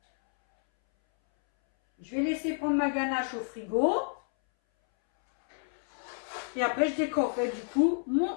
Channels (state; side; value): silent; right; 58 dB below the other